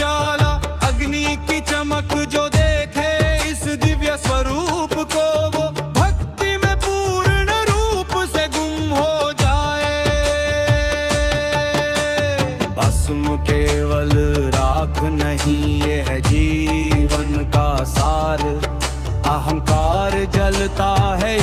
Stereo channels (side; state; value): both; identical; correlation 1.00